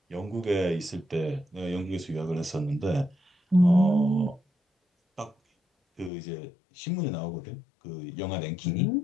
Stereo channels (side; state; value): right; drops out; at 6.1 s